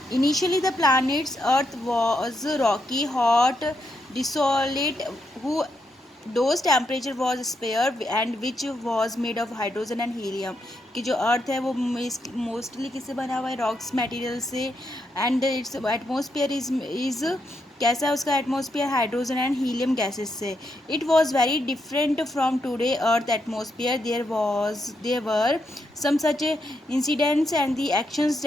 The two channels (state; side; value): normal; both; correlation 0.81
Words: Initially, the planet's Earth was rocky, hot, desolate, whose temperature was spare and which was made of hydrogen and helium. कि जो अर्थ है वो mostly किससे बना हुआ है, rocks material से. And its atmosphere is कैसा है उसका atmosphere, hydrogen and helium gases से. It was very different from today earth atmosphere. There were some such incidents and the actions